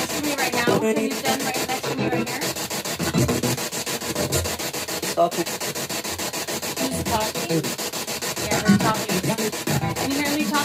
to me right now? Can you stand right next to me right here? Who's talking? Yeah, we're talking. Can you hear me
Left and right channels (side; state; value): both; identical; correlation 1.00